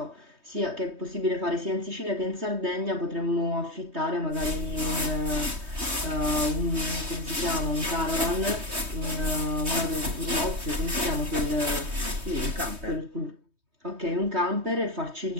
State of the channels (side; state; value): left; late; 3.2 ms